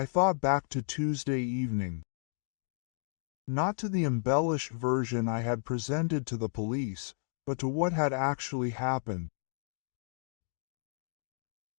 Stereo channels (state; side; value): silent; right; digital silence